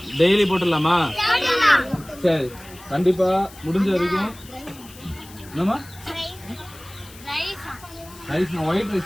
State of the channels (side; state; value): left; noise; hiss, 20 dB below the sound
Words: டெய்லி போட்டுடலாமா? சரி, கண்டிப்பா முடிஞ்ச வரைக்கும். என்னமா ரைஸ்? ஒயிட்